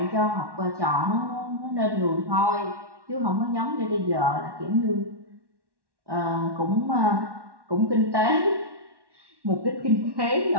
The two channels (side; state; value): left; late; 1.1 ms